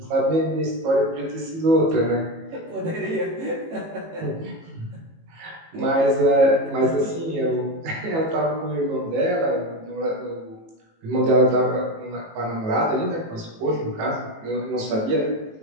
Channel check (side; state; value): left; late; 18 ms